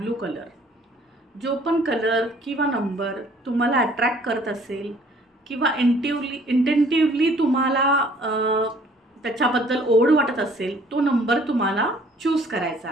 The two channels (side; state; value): both; normal; correlation 0.58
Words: कलर. जो पण कलर किंवा नंबर तुम्हाला अट्रॅक्ट करत असेल किंवा इंटेंटिव्हली तुम्हाला त्याच्याबद्दल ओढ वाटत असेल तो नंबर तुम्हाला चूज करायचा